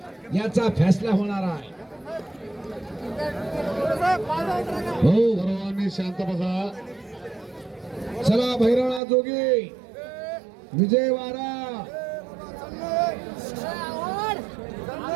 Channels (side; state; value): left; drops out; at 9.0 s